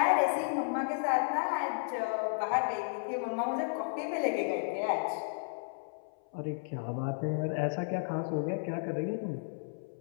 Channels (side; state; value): right; silent; 56 dB below the other